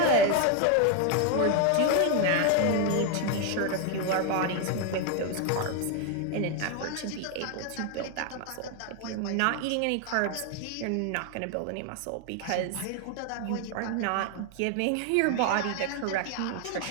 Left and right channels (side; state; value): both; different; correlation 0.01